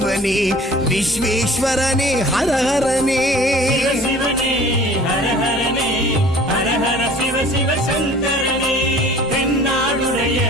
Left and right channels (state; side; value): normal; both; correlation 0.48